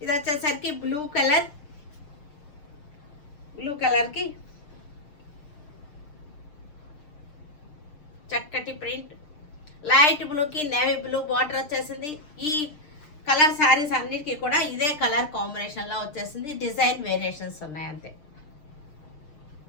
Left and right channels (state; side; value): late; right; 6.6 ms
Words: ఇది వచ్చేసరికి బ్లూ కలర్కి చక్కటి ప్రింట్, లైట్ బ్లూకి నేవీ బ్లూ బార్డర్ వచ్చేసింది. ఈ కలర్ శారీస్ అన్నిటికీ కూడా ఇదే కలర్ కాంబినేషన్లో వచ్చేసింది. డిజైన్ వేరియేషన్స్ ఉన్నాయి అంతే.